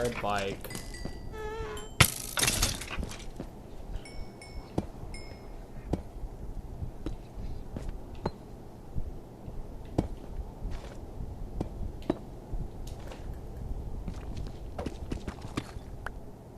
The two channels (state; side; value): identical; both; correlation 1.00